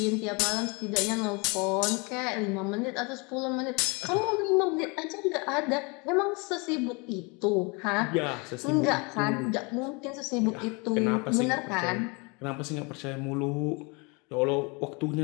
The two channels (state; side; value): quieter; right; 29.7 dB